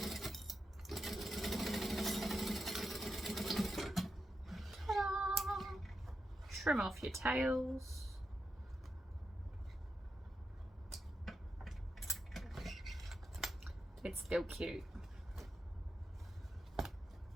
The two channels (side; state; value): both; normal; correlation 0.87